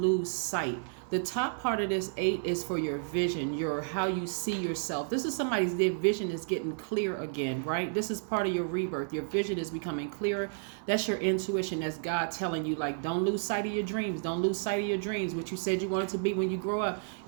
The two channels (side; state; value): left; silent; 57 dB below the other